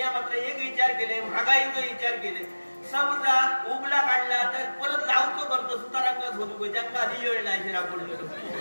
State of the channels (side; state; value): both; inverted; correlation -1.00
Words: मात्र एक विचार केले महागाईचा विचार केले. समजा उगला काढला तर परत लावतो करतो सुतारांगत होतो ज्यांना आधी वेळ नाही पडलो.